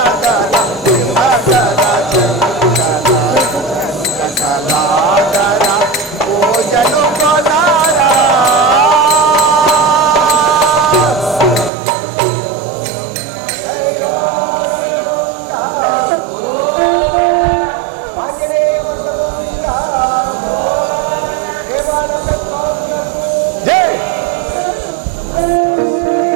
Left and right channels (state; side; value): drops out; left; at 11.7 s